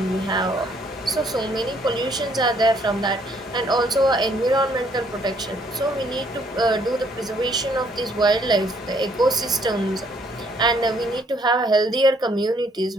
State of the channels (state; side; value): normal; both; correlation 0.66